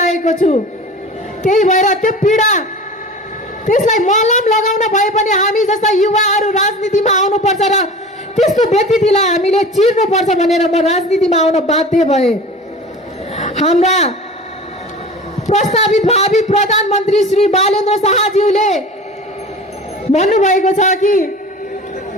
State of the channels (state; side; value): normal; both; correlation 0.37